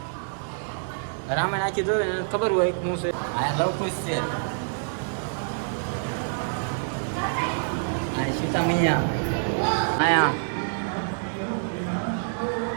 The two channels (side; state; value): left; silent; digital silence